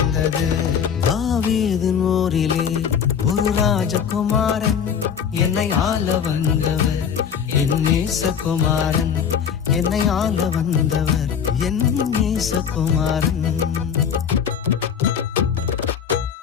தாவீதின் ஊரிலே ஒரு ராஜகுமாரன் என்னை ஆள வந்தவர் என் நேசகுமாரன். என்னை ஆள வந்தவர் என் நேசகுமாரன்.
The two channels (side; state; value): right; quieter; 7.5 dB